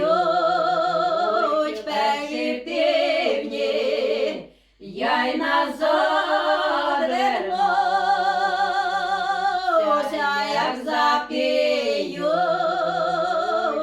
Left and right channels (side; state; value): both; identical; correlation 1.00